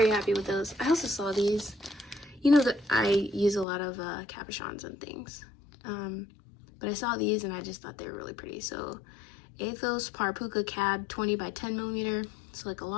happy with those. I also saw these. You know that I use a lot of cabochons and things. But I saw these and I just thought they were really pretty. So Athos Parpuka Cab 20 by 10 millimeter. So like a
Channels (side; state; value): right; drops out; at 3.7 s